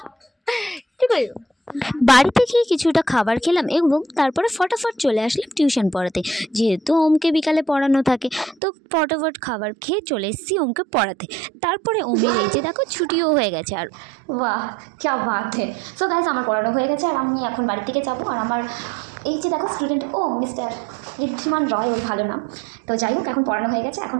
ঠিক আছে। বাড়ি থেকে কিছুটা খাবার খেলাম, এবং তারপরে ফটাফট চলে আসলাম টিউশন পড়াতে। যেহেতু ওমকে বিকালে পড়ানো থাকে, তো ফটাফট খাবার খেয়ে চলে এসেছি ওমকে পড়াতে। তারপরে ওমের এই যে দেখো ছুটিও হয়ে গেছে। আর বাহ, ক্যা বাত হে। সো গাইস, আমার পড়ানো হয়ে গেছে, আর আমি এখন বাড়ির দিকে যাবো। আর আমার এই যে দেখো স্টুডেন্ট, ও মিস্টার ঋদ্ধিমান রয়, ওই ভালো নাম। তো যাই হোক, এখন পড়ানো হয়ে গেছে,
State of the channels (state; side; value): drops out; left; at 8.6 s